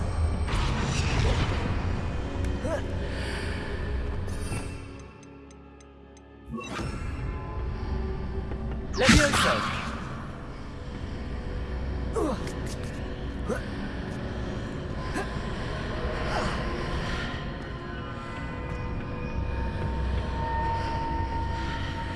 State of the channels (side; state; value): both; identical; correlation 1.00